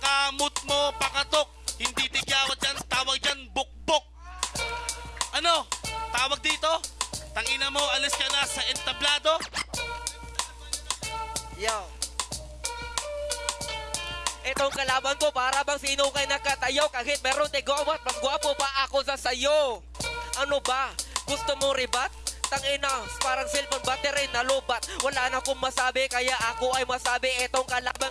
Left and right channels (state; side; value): identical; both; correlation 1.00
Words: mo, pakatok. Hindi tigyawat yan, tawag dyan, bukbok. Ano? Tawag dito? Tangina mo, alis ka na sa entablado? Yo. Itong kalaban ko para bang sino kay nakatayo. Kahit meron tigawat, mas gwapo pa ako sa sayo. Ano ba? Gusto mo ribat? Tangina, parang cellphone battery na lubat. Wala na akong masabi, kaya ako ay masabi. Itong kalaban